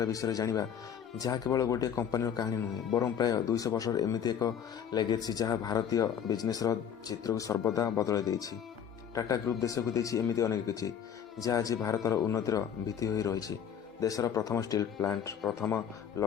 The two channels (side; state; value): right; quieter; 8.5 dB